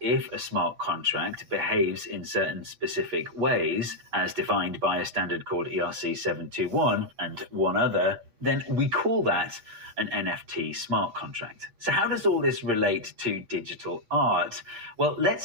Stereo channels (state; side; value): late; left; 8.6 ms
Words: a smart contract behaves in certain specific ways, as defined by a standard called ERC 721 and one other, then we call that an NFT smart contract. So how does all this relate to digital art? Well,